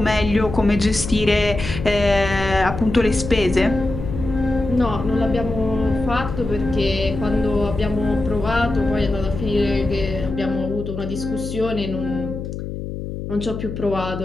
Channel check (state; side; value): noise; left; hum, 7 dB below the sound